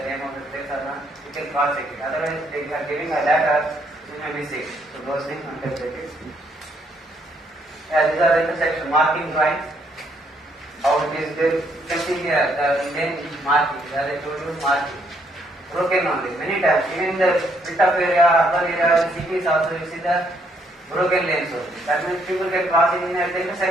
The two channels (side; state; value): both; normal; correlation 0.71